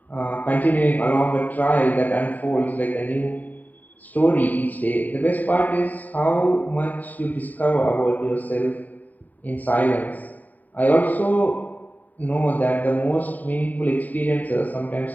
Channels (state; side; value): late; right; 0.081 ms